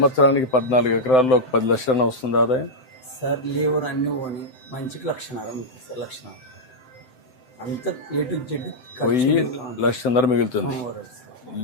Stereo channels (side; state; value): right; late; 7.8 ms